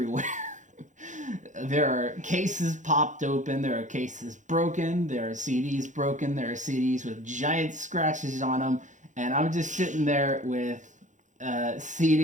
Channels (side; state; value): left; late; 0.36 ms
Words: There are cases popped open. There are cases broken. There are CDs broken. There are CDs with giant scratches on them. And I'm just sitting there with a